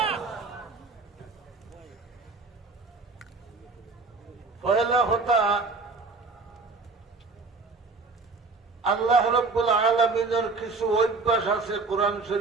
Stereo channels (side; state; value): left; quieter; 4.0 dB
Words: পয়লা কথা, আল্লাহ রাব্বুল আলামিনের কিছু অভ্যাস আছে কোরআন